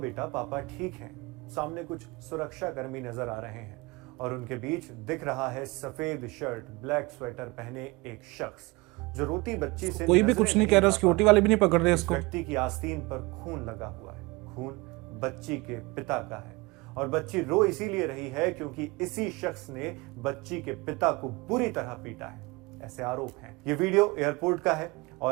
पापा ठीक हैं। सामने कुछ सुरक्षा कर्मी नजर आ रहे हैं और उनके बीच दिख रहा है सफेद शर्ट, ब्लैक स्वेटर पहने एक शख्स जो रोती बच्ची से कोई भी कुछ नहीं कह रहा, सिक्योरिटी वाले भी नहीं पकड़ रहे इसको। व्यक्ति की आस्तीन पर खून लगा हुआ है। खून बच्ची के पिता का है और बच्ची रो इसीलिए रही है क्योंकि इसी शख्स ने बच्ची के पिता को बुरी तरह पीटा है, ऐसे आरोप हैं। ये वीडियो एयरपोर्ट का है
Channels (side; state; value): left; quieter; 24.1 dB